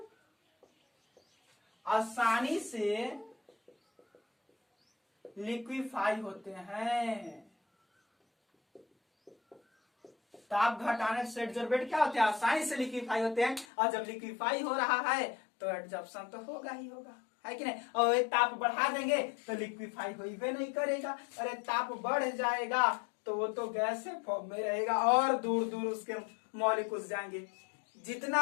आसानी से लिक्विफाई होते हैं। ताप घटाने से एडजॉर्बेट क्या होते हैं, आसानी से लिक्विफाई होते हैं। और जब लिक्विफाई हो रहा है तो एडजॉर्प्शन तो होगा ही होगा, है कि नहीं। और ये ताप बढ़ा देंगे तो लिक्विफाई होइबे नहीं करेगा। अरे ताप बढ़ जाएगा तो वो तो गैस से फॉर्म में रहेगा और दूर दूर उसके मॉलिक्यूल्स जाएंगे।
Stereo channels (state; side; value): drops out; right; at 13.7 s